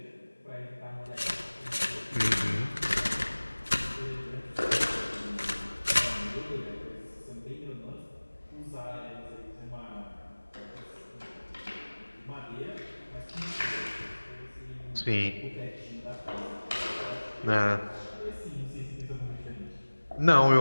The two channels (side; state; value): both; inverted; correlation -1.00